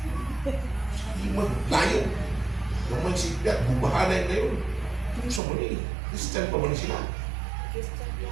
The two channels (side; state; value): left; drops out; at 5.4 s